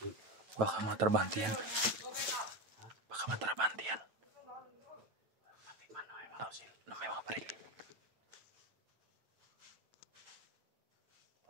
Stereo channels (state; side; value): late; left; 9.1 ms